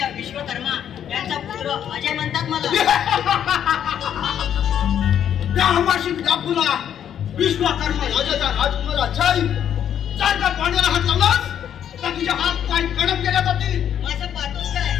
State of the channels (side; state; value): right; quieter; 9.5 dB